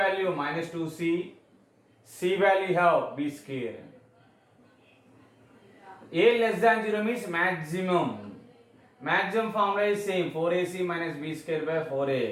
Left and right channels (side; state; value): both; identical; correlation 1.00